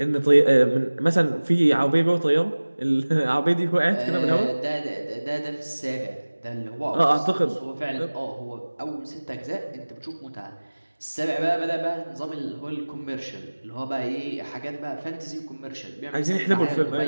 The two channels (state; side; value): inverted; both; correlation -1.00